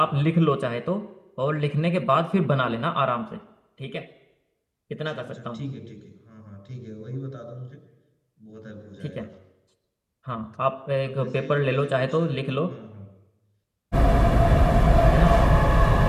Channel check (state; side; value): identical; both; correlation 1.00